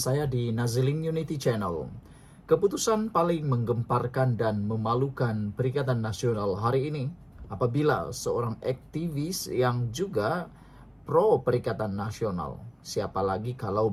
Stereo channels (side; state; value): both; identical; correlation 1.00